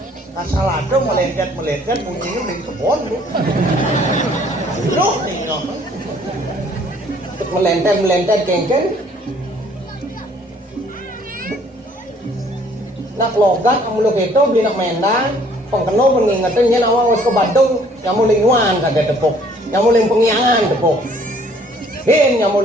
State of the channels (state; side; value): normal; both; correlation 0.59